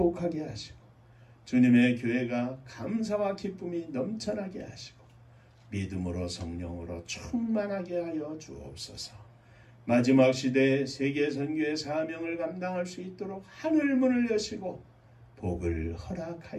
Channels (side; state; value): both; identical; correlation 1.00